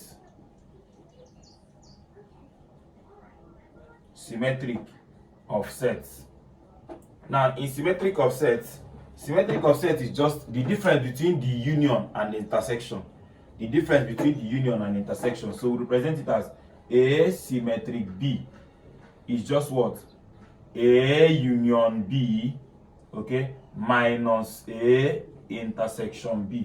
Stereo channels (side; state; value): both; identical; correlation 1.00